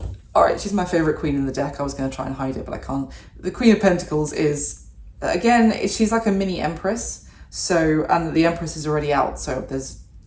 All right, she's my favorite queen in the deck. I was going to try and hide it, but I can't. The Queen of Pentacles is, again, she's like a mini Empress. So, and the Empress is already out, so there's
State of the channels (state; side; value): identical; both; correlation 1.00